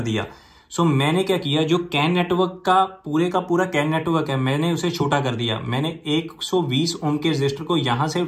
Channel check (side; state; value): both; identical; correlation 1.00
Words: दिया। सो मैंने क्या किया, जो कैन नेटवर्क का पूरा कैन नेटवर्क है, मैंने उसे छोटा कर दिया। मैंने 120 ओम के रजिस्टर को यहां से